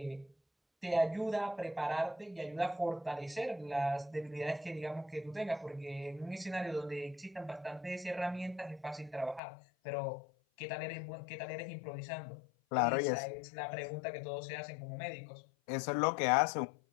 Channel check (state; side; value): drops out; right; at 9.4 s